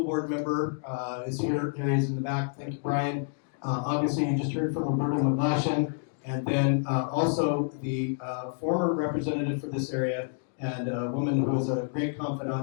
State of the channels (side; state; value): right; silent; digital silence